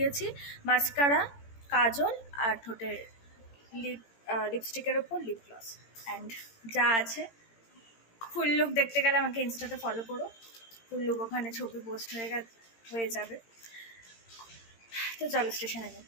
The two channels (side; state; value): right; late; 18 ms